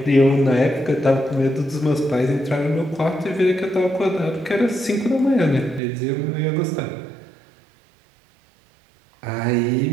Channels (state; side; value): drops out; left; at 5.8 s